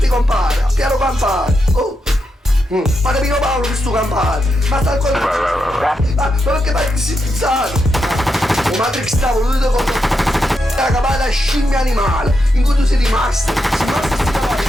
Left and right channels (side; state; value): both; normal; correlation 0.84